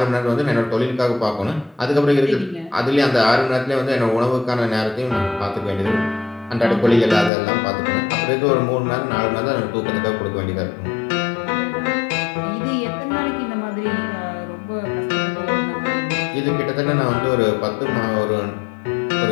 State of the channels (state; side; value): drops out; right; at 7.3 s